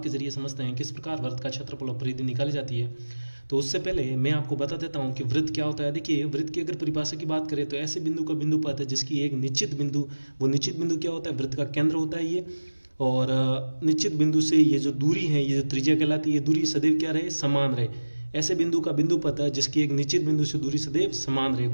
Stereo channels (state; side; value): inverted; both; correlation -1.00